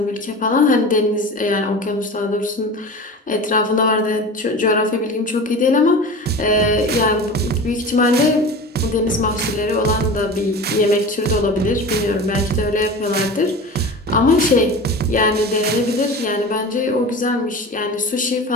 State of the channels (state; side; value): normal; both; correlation 0.33